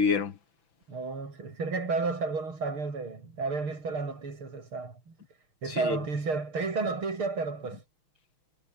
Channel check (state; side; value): late; left; 6.5 ms